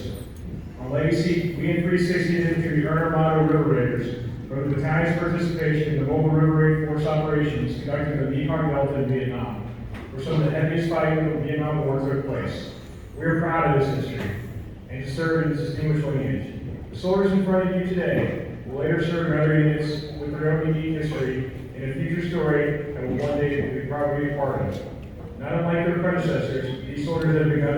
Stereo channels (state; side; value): identical; both; correlation 1.00